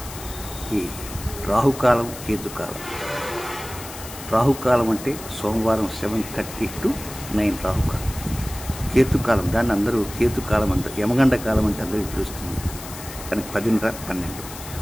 ఈ రాహుకాలం కేతుకాలం. రాహుకాలం అంటే సోమవారం 7:30 to 9 రాహుకాలం. కేతుకాలం దాన్ని అందరూ కేతుకాలం అంటారు. యమగండ కాలం అంటే అందరికీ తెలుస్తుంది, కానీ 10:30-12.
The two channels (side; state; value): left; noise; hiss, 13 dB below the sound